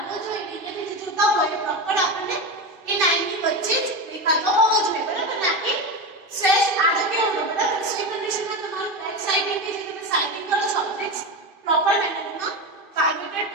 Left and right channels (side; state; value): left; late; 2.6 ms